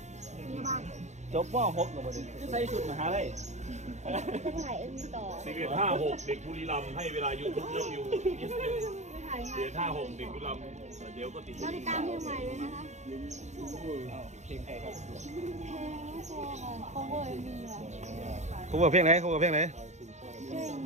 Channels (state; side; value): late; left; 0.33 ms